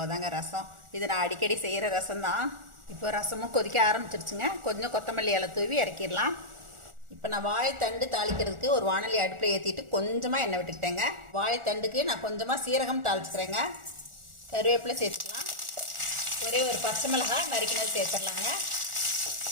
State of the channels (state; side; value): late; left; 1.4 ms